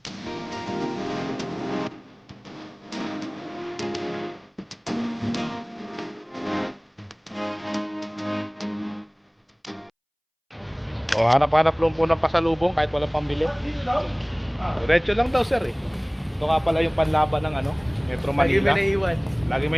O, hanap-hanap lang po ng pasalubong kahit walang pambili. Diretso lang daw sir eh. Ito nga pala yung panlaban ng ano, Metro Lagi Manila. may naiiwan. Lagi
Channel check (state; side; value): identical; both; correlation 1.00